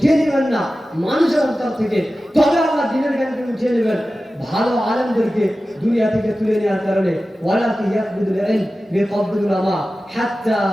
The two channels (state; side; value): normal; both; correlation 0.95